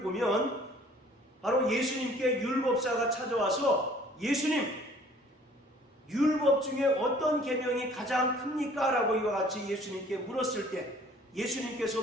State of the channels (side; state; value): both; normal; correlation 0.54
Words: 보면 바로 예수님께 율법사가 찾아와서 예수님, 율법 중에 어떤 계명이 가장 큽니까? 라고 이와 같이 예수님께 물었을 때 예수님께서